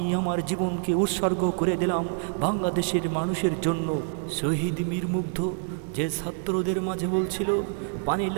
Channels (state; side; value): silent; left; digital silence